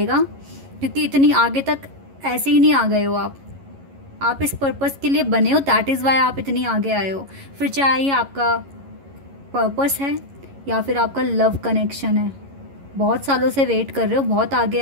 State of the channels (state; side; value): late; left; 11 ms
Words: क्योंकि इतनी आगे तक ऐसे ही नहीं आ गए हो आप, आप इस पर्पस के लिए बने हो, दैट इज़ वाई आप इतनी आगे आए हो। फिर चाहे आपका पर्पस है या फिर आपका लव कनेक्शन है, बहुत सालों से वेट कर रहे हो, बहुत आगे